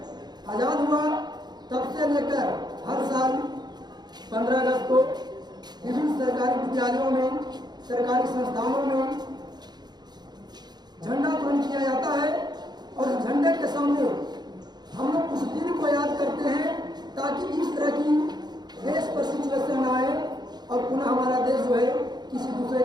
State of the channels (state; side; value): late; left; 0.20 ms